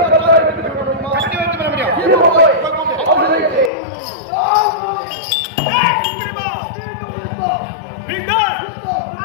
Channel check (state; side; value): drops out; right; at 3.7 s